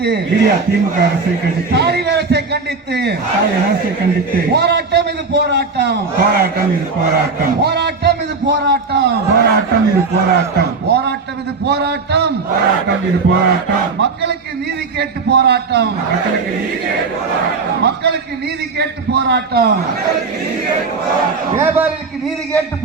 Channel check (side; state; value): left; quieter; 4.4 dB